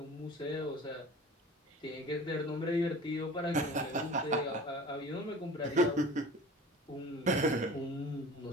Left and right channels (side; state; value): both; normal; correlation 0.41